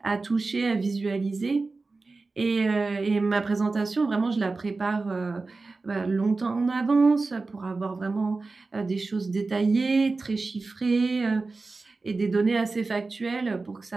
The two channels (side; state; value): left; quieter; 3.7 dB